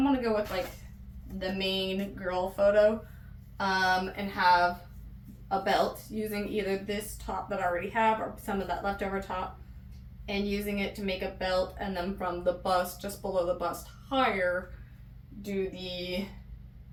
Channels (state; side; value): identical; both; correlation 1.00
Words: want to go with like the main girl photo and have a belt using either this top that I already have or some of that leftover top and using it to make a belt, and then from the bust, just below the bust higher, do the